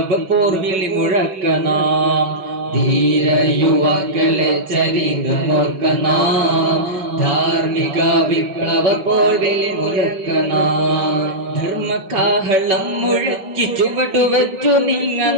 പോർവിളി മുഴക്കനാം ധീര യുവാക്കളെ ചരിതമോർക്കനാം ധാർമ്മിക വിപ്ലവ പോർവിളി മുഴക്കനാം ധർമ്മകാഹളം മുഴക്കി ചുവടുവച്ചു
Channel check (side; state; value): left; late; 5.7 ms